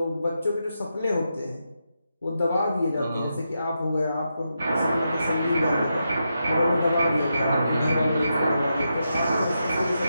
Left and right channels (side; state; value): both; inverted; correlation -0.86